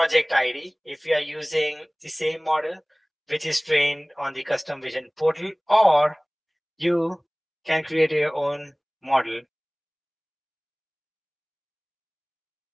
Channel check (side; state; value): both; identical; correlation 1.00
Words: ID if you are using the same model which is trained on the custom vision portal, or you can create your own model.